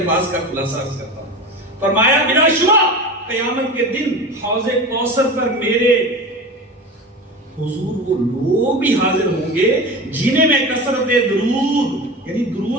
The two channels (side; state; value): both; normal; correlation 0.29